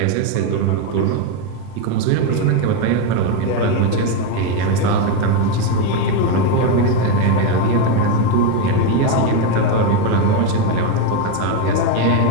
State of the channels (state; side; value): different; both; correlation 0.02